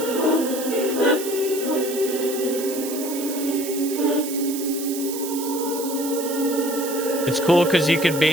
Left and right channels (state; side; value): noise; right; hiss, 8 dB below the sound